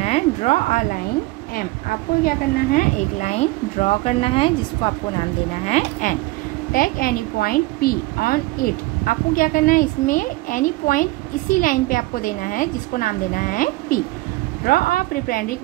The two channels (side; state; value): left; quieter; 20.7 dB